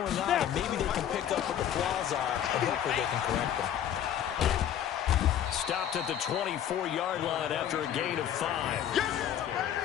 on. And maybe they can pick up what the flaws are and hopefully they can correct them. Stopped at the 24-yard line after a gain of 5.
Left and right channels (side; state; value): right; quieter; 10.1 dB